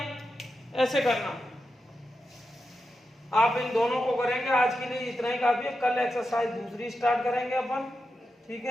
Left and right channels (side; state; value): both; normal; correlation 0.89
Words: ऐसे करना। आप इन दोनों को करेंगे, आज के लिए इतना ही काफी है। कल एक्सरसाइज दूसरी स्टार्ट करेंगे अपन। ठीक